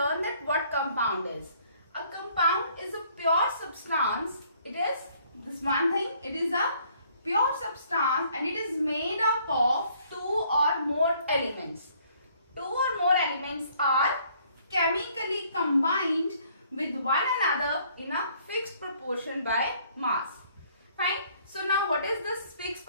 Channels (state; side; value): inverted; both; correlation -0.62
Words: that what compound is. A compound is a pure substance. It is this one thing. It is a pure substance and it is made up of two or more elements. Two or more elements are chemically combined with one another in a fixed proportion by mass. Fine. So now what is this fixed